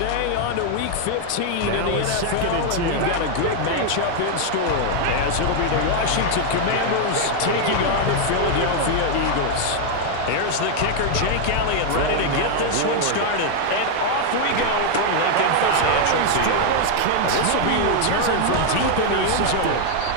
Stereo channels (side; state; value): both; different; correlation 0.00